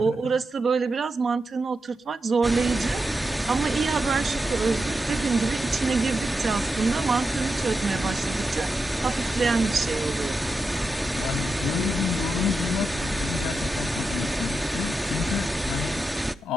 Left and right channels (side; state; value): both; normal; correlation 0.88